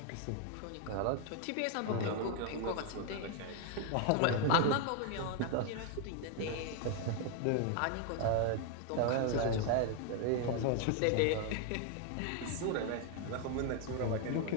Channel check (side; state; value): both; different; correlation 0.00